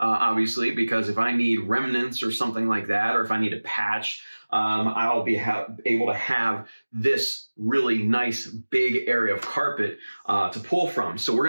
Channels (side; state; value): both; inverted; correlation -1.00